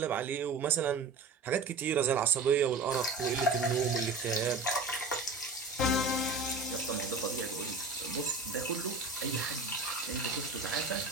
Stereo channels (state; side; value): quieter; left; 3.8 dB